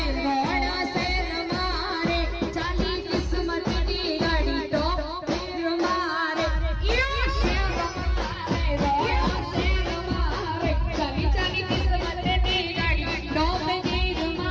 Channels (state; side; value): identical; both; correlation 1.00